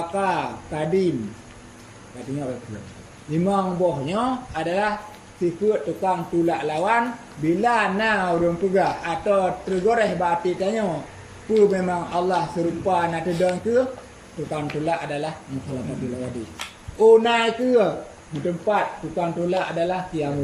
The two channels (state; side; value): identical; both; correlation 1.00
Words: kadim katanya itu. Lima buahnya adalah sifat tukang tulak lawan bila na urung pegah atau tergoreh berarti tanya pu memang Allah serupa nak tedang ke tukang tulak adalah mukhalafatu lil hawadis. Unai ke tempat tukang tolak adalah